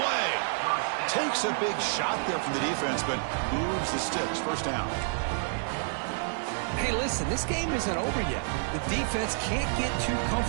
Takes a big shot there from the defense, but moves the sticks. First down. Hey, listen, this game isn't over yet. The defense can't get too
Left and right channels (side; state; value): left; silent; digital silence